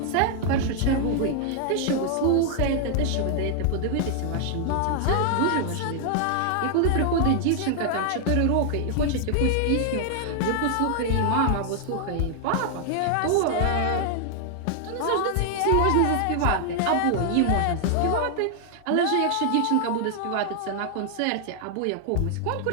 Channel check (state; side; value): different; both; correlation 0.00